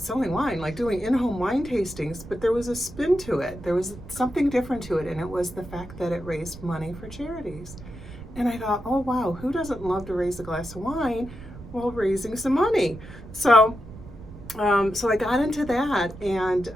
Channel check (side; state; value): right; noise; rumble, 15 dB below the sound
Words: wine, like doing in-home wine tastings, but there was a spin to it. There was something different to it, and it was the fact that it raised money for charities. And I thought, oh, wow, who doesn't love to raise a glass of wine while raising some money? So I got into that, and